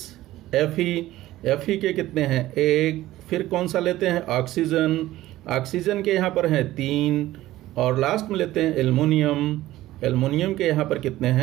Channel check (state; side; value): quieter; left; 15.7 dB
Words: Fe के कितने हैं 1, फिर कौन सा लेते हैं ऑक्सीजन, ऑक्सीजन के यहाँ पर हैं 3 और लास्ट में लेते हैं एल्युमिनियम के यहाँ पर कितने